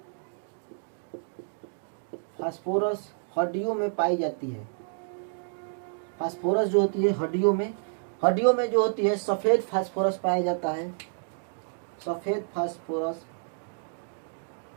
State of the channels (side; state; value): left; silent; digital silence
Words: फास्फोरस हड्डियों में पाई जाती है। फास्फोरस जो होती है हड्डियों में जो होती है सफेद फास्फोरस पाया जाता है। सफेद फास्फोरस